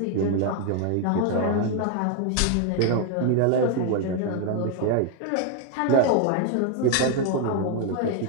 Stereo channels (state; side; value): different; both; correlation 0.00